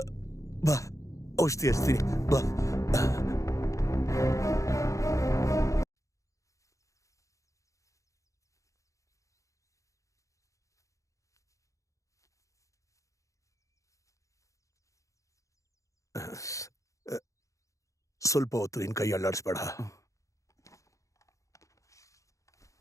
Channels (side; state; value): right; late; 0.15 ms